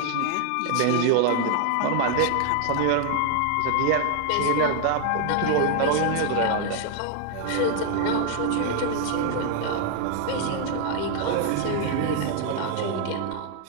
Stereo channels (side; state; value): both; different; correlation 0.00